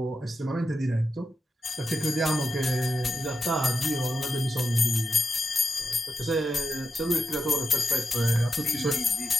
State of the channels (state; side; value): normal; both; correlation 0.87